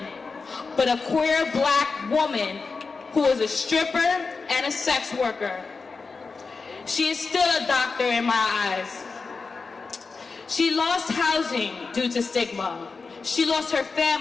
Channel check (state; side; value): quieter; right; 4.5 dB